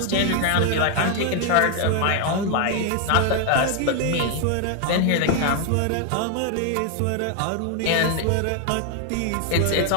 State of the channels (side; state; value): both; different; correlation 0.00